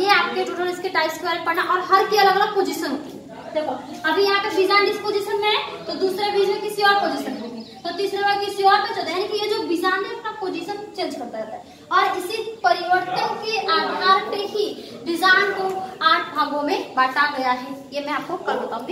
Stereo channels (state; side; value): identical; both; correlation 1.00